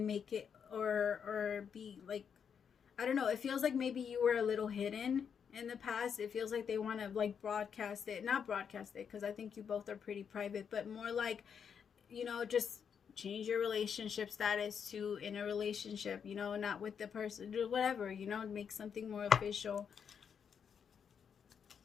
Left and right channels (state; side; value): quieter; right; 7.2 dB